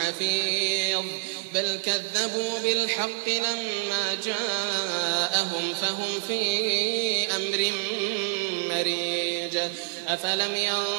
بل كذبوا بالحق لما جاءهم فهم في أمر مريج أفلم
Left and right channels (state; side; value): silent; left; digital silence